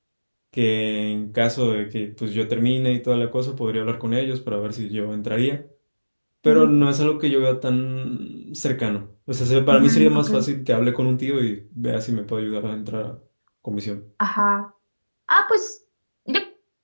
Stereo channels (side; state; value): both; inverted; correlation -1.00